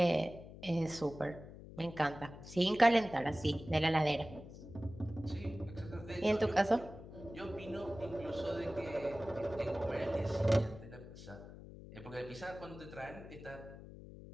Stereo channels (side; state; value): left; noise; hum, 15 dB below the sound